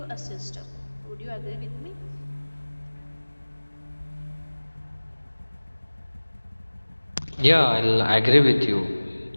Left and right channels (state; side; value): inverted; both; correlation -1.00